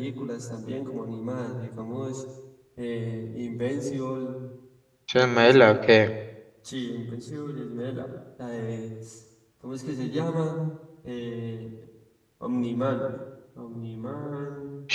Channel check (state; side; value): identical; both; correlation 1.00